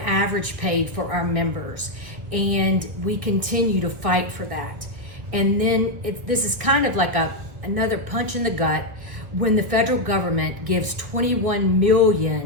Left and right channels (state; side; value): late; left; 1.8 ms